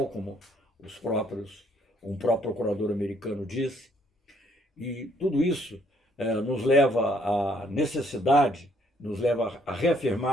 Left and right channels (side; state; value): both; normal; correlation 0.67